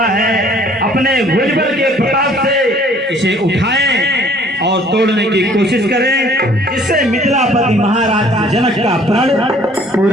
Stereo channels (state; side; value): normal; both; correlation 0.56